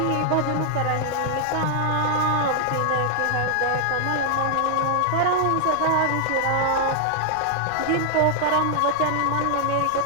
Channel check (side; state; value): both; different; correlation 0.00